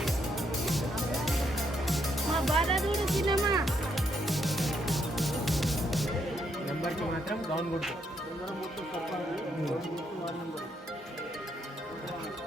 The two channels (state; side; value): normal; both; correlation 0.75